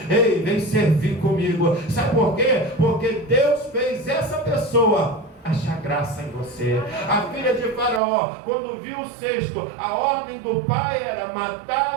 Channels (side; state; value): left; drops out; at 8.0 s